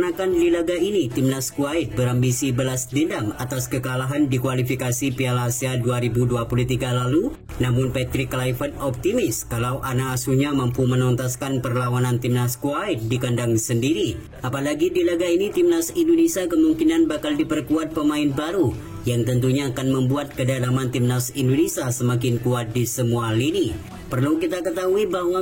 di laga ini Timnas Kuwait berambisi balas dendam atas kekalahan di kualifikasi Piala Asia 2023 lalu, namun Patrick Kluivert optimis kalau anak asuhnya mampu menuntaskan perlawanan Timnas Kuwait di kandang sendiri. Apalagi di laga ini Timnas Indonesia kemungkinan bakal diperkuat pemain baru yang tentunya akan membuat kedalaman Timnas Indonesia semakin kuat di semua lini. Perlu kita ketahui bahwa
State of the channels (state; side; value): identical; both; correlation 1.00